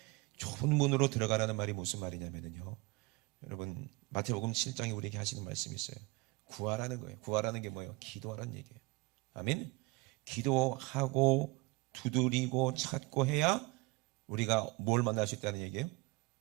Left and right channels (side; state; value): left; quieter; 24.8 dB